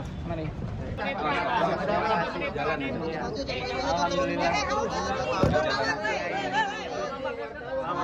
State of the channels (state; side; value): identical; both; correlation 1.00